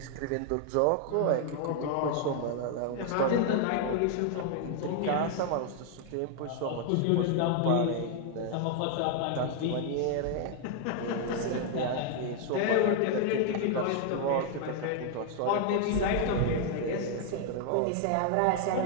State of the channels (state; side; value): different; both; correlation 0.00